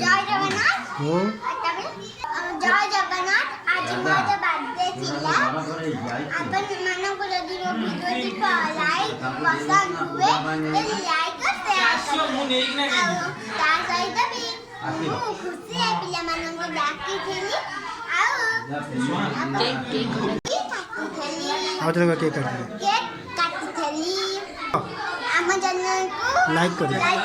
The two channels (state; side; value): identical; both; correlation 1.00